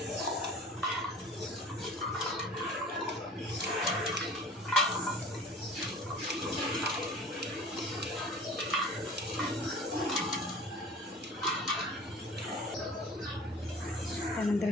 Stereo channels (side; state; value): both; normal; correlation 0.43